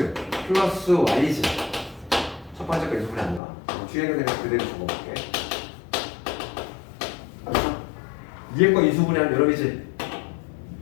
플러스 y지. 첫 번째 거 인수분해 아닌가? 뒤에 있는 거 그대로 적어볼게. 알았어? 위에 거 인수분해하면 여러분이지.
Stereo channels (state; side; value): drops out; right; at 3.4 s